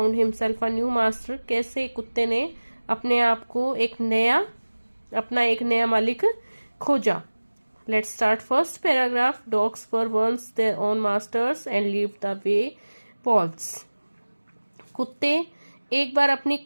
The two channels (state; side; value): inverted; both; correlation -1.00